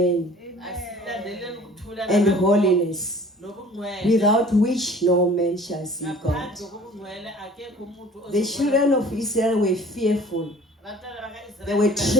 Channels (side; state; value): both; normal; correlation 0.48